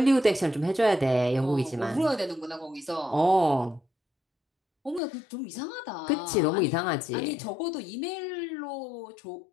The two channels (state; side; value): drops out; right; at 5.0 s